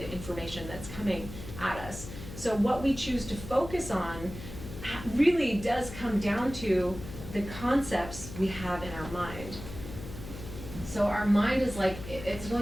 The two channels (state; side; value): noise; left; hum, 11 dB below the sound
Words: information that's coming at us. So what we choose to focus on really does come down to the concepts we have in our mind. So our mind is like, it's